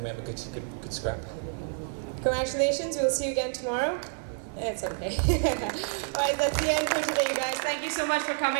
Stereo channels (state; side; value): silent; left; 59 dB below the other